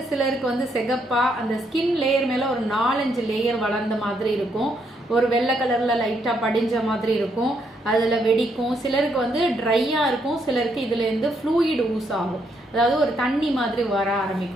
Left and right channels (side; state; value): both; normal; correlation 0.75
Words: சிலருக்கு வந்து செகப்பாக, அந்த ஸ்கின் லேயர் மேலே ஒரு 4-5 லேயர் வளர்ந்த மாதிரி இருக்கும். ஒரு வெள்ளை கலரில் லைட்டாக படிஞ்ச மாதிரி இருக்கும். அதில் வெடிக்கும். சிலருக்கு வந்து ட்ரையாக இருக்கும். சிலருக்கு இதுலேருந்து ஃப்ளூயிட் ஊஸ் ஆகும். அதாவது ஒரு தண்ணி மாதிரி வர